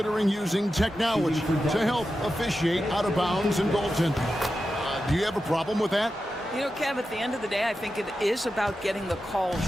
using technology to help officiate out of bounds and goaltending. Do you have a problem with that? You know, Kev, at the end of the day, I think it is about getting the calls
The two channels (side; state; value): both; normal; correlation 0.91